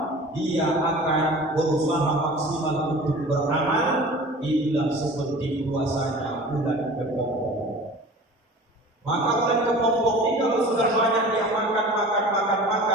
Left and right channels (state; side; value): normal; both; correlation 0.41